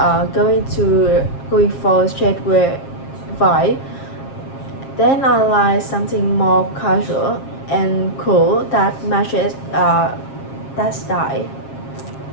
going for streetwear vibe, then I like something more casual and cool that matches that style.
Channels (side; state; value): right; late; 7.4 ms